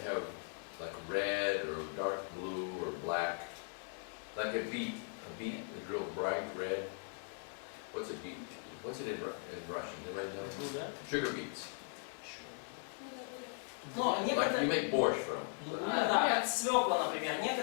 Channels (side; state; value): right; silent; 52 dB below the other